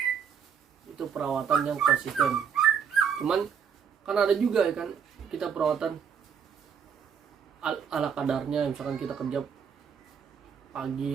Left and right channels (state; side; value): quieter; left; 7.2 dB